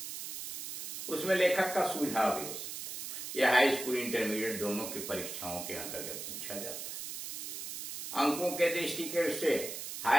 उसमें लेखक का सुझाव भी हो सकता है। यह हाई स्कूल, इंटरमीडिएट दोनों की परीक्षाओं के अंतर्गत पूछा जाता है। अंकों के दृष्टिकोण से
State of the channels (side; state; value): right; noise; hiss, 7 dB below the sound